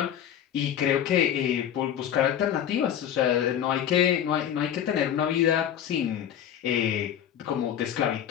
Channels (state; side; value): quieter; right; 9.8 dB